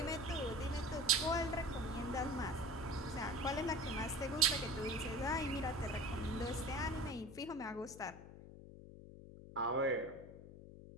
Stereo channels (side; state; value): left; noise; hum, 15 dB below the sound